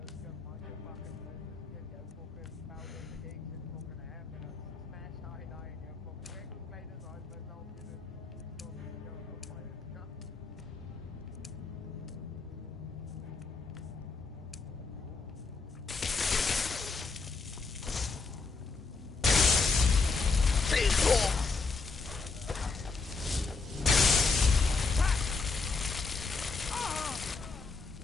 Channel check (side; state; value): right; quieter; 4.3 dB